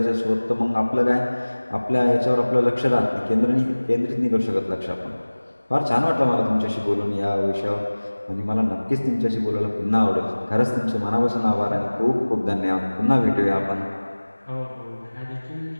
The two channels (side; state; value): both; inverted; correlation -1.00